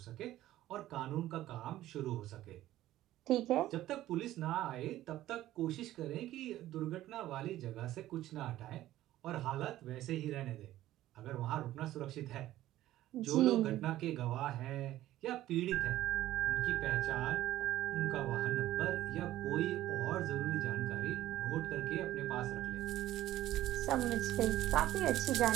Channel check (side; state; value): left; quieter; 14.4 dB